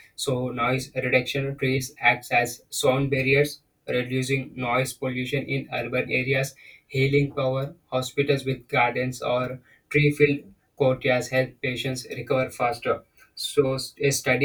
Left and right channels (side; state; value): both; identical; correlation 1.00